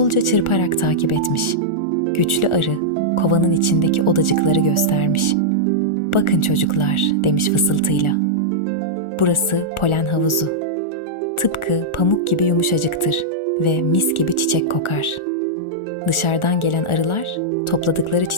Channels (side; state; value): right; late; 1.4 ms